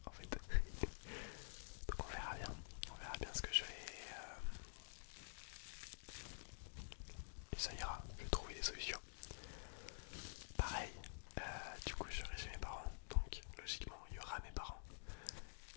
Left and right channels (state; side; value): silent; right; digital silence